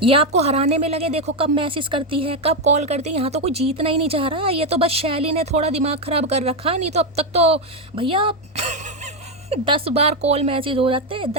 ये आपको हराने में लगे, देखो कब मैसेज करती है, कब कॉल करती है। यहाँ तो कोई जीतना ही नहीं चाह रहा। ये तो बस शैली ने थोड़ा दिमाग ख़राब कर रखा, नहीं तो अब तक तो भैया 10 बार कॉल मैसेज हो जाते हैं,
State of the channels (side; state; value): both; normal; correlation 0.06